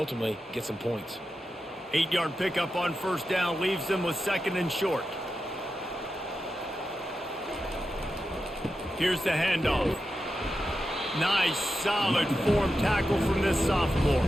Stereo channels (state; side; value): normal; both; correlation 0.90